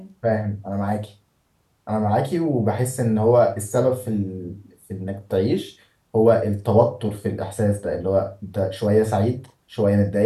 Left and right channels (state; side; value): identical; both; correlation 1.00